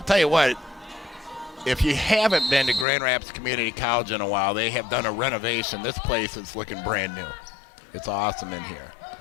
tell you what, if you haven't been to Grand Rapids Community College in a while, they have done a renovation. This place is looking brand new. It's awesome in here.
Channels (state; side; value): drops out; right; at 2.9 s